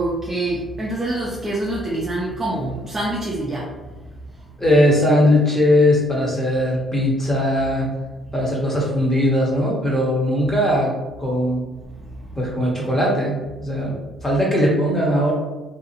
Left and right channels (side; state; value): both; normal; correlation 0.65